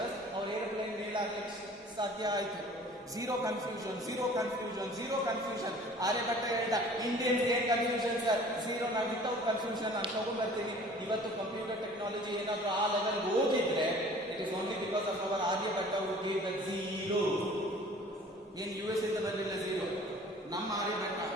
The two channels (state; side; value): normal; both; correlation 0.48